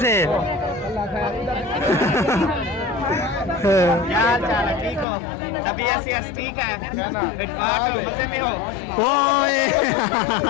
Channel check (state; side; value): drops out; right; at 5.1 s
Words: से क्या हाल चाल है? ठीक हो? तबीयत ठीक है? फिटफाट हो? मजे में हो? ओए